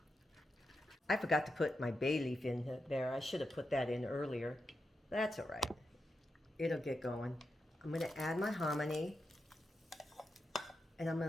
I forgot to put my bay leaf in there. I should have put that in earlier. That's all right. It'll get going. I'm going to add my hominy. And I'm going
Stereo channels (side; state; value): both; normal; correlation 0.87